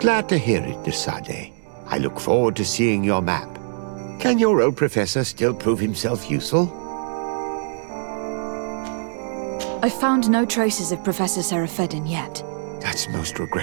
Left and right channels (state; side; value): silent; left; 64 dB below the other